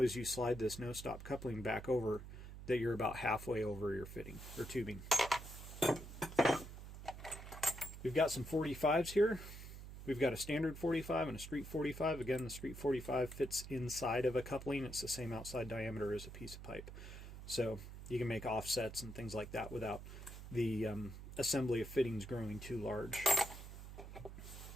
as you slide this no-stop coupling back over that you're about halfway over your fitting or tubing. We've got some 45s here. We've got a standard 45 and a street 45. Again, the street 45 fits inside of a coupling. It's the same outside diameter as a piece of pipe. So you can make offsets and things like that without the assembly of fittings growing too large.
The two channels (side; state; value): right; noise; hum, 12 dB below the sound